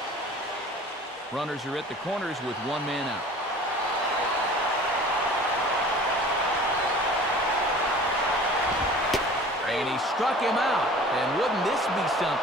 Runners are at the corners with one man out. And he struck him out. And wouldn't this be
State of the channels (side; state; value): both; normal; correlation 0.44